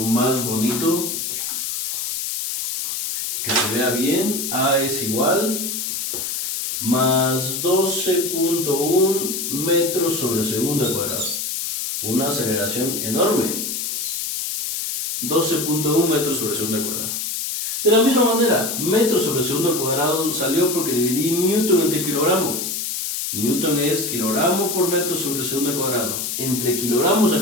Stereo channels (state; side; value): noise; left; hiss, 3 dB below the sound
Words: bonito, que se vea bien. A es igual más 12.1 metros sobre segundo al cuadrado. Una aceleración enorme. 12.1 metros sobre segundo al cuadrado. De la misma manera, metros sobre segundo al cuadrado salió porque dividí newton entre kilogramo. Newton es kilogramo por metro sobre segundo al cuadrado. Entre kilogramos